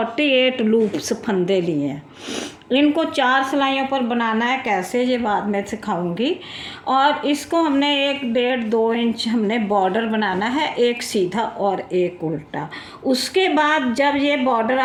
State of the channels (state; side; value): identical; both; correlation 1.00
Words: लूप्स फंदे लिए हैं। इनको 4 सिलाइयों पर बनाना है, कैसे ये बाद में सिखाऊंगी। और इसको हमने 1.5-2 इंच हमने बॉर्डर बनाना है, एक सीधा और एक उल्टा। उसके बाद जब ये बॉर्डर